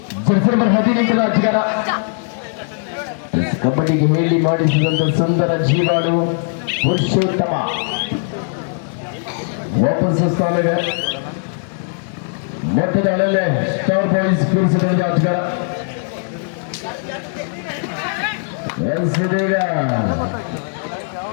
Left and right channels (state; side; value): silent; right; digital silence